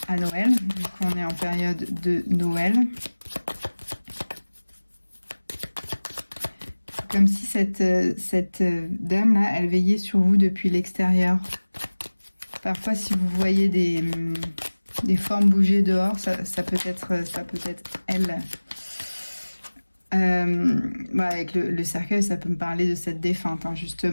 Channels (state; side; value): inverted; both; correlation -1.00